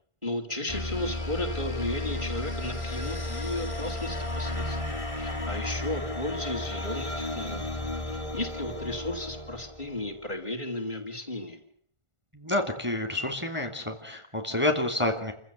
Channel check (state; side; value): late; left; 1.5 ms